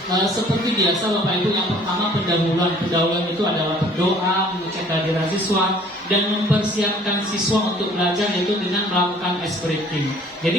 seperti biasa Bapak Ibu. Yang pertama pendahuluan. Pendahuluan itu adalah berdoa, mengecek kehadiran siswa dan mempersiapkan siswa untuk belajar, yaitu dengan melakukan ice breaking.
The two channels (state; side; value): normal; both; correlation 0.54